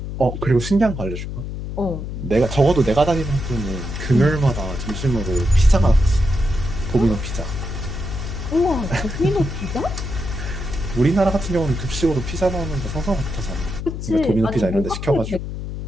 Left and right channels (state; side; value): noise; left; hum, 6 dB below the sound